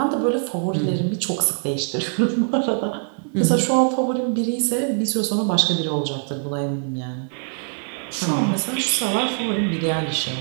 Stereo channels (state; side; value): silent; left; 60 dB below the other